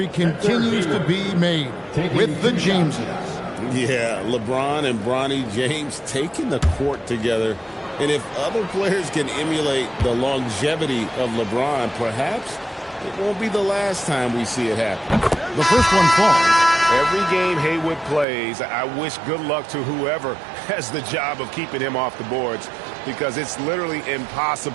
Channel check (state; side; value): drops out; left; at 18.2 s